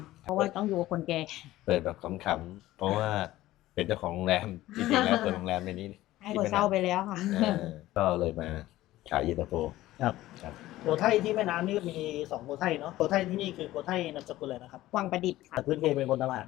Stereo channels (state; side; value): quieter; right; 15.9 dB